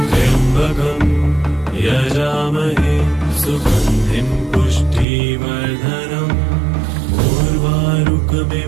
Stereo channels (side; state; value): left; drops out; at 5.1 s